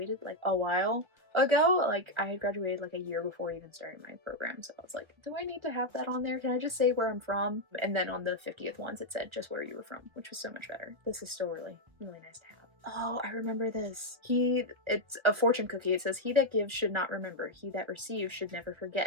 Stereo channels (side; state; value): left; late; 1.3 ms